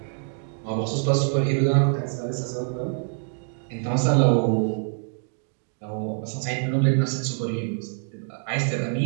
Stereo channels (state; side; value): silent; left; 58 dB below the other